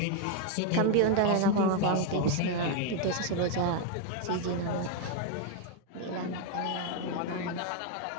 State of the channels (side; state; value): both; different; correlation 0.01